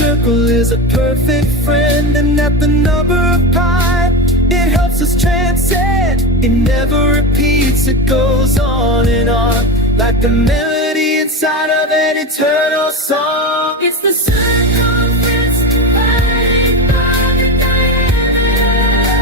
is a perfect friend, and that the number of pi, it helps us transcend. It never repeats, it goes on and on, like the melody inside of an eternal song. It's the circumference divided by the diameter.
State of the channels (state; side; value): normal; both; correlation 0.19